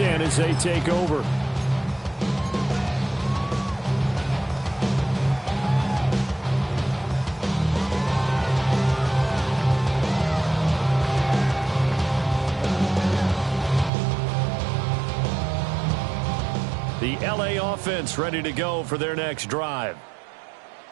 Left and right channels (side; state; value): left; drops out; at 13.9 s